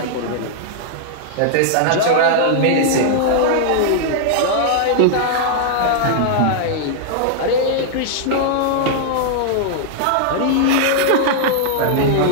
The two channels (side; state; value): both; different; correlation -0.01